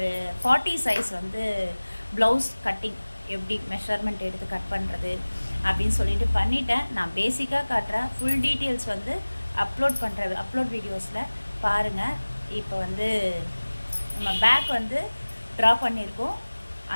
40 சைஸ் வந்து ப்ளவுஸ் கட்டிங் எப்படி மெஷர்மெண்ட் எடுத்து கட் பண்ணுறது அப்படின்னு சொல்லிட்டு பண்ணிட்டேன். நான் பேசிக்காக காட்டுறேன். ஃபுல் டீட்டெயில்ஸ் வந்து அப்லோட் வீடியோஸில் பாருங்கள். இப்போ வந்து நம்ம பேக் வந்து ட்ரா பண்ணியிருக்கோம்,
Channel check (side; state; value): both; inverted; correlation -1.00